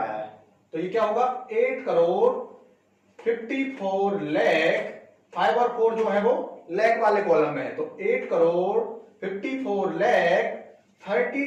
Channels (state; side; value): identical; both; correlation 1.00